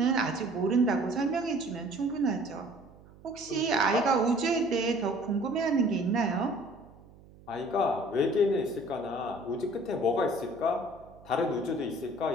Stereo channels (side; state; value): right; noise; hum, 23 dB below the sound